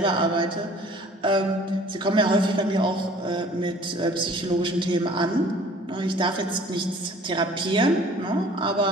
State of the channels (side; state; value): both; normal; correlation 0.51